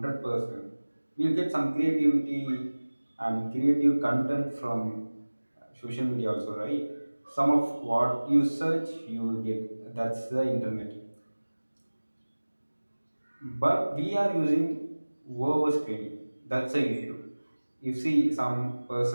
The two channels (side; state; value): both; inverted; correlation -1.00